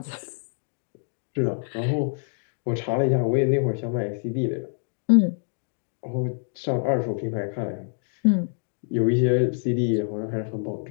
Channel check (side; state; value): right; silent; digital silence